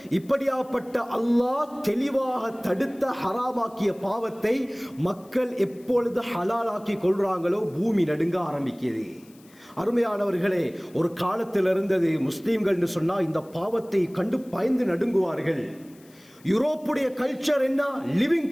இப்படியாப்பட்ட அல்லாஹ் தெளிவாக தடுத்த ஹராமாக்கிய பாவத்தை மக்கள் எப்பொழுது ஹலாலாக்கி கொள்றாங்களோ பூமி நடுங்க ஆரம்பிக்கிறது. அருமையானவர்களே, ஒரு காலத்தில் இருந்தது முஸ்லீம்கள் என்று சொன்னால் இந்த பாவத்தை கண்டு பயந்து நடுங்குவார்கள். யூரோப்புடைய கல்ச்சர் என்ன? லிவிங்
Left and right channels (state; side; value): noise; left; hiss, 28 dB below the sound